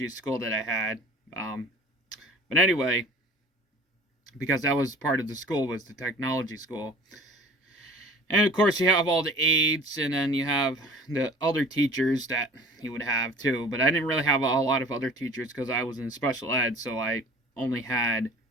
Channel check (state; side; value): normal; both; correlation 0.45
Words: school that I had. But anyway, because that was part of the school, was the technology school. And of course you have all the aides, and then you have the other teachers that you would have too. But I didn't really have a lot of other teachers because I was in special ed, so I only had